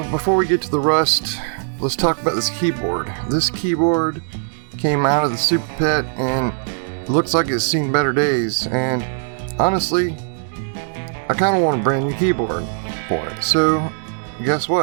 before we get to the rust, let's talk about this keyboard. This keyboard came out of the Super PET and it looks like it's seen better days. And honestly, I kind of want a brand new keyboard for it. So guess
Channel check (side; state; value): left; silent; digital silence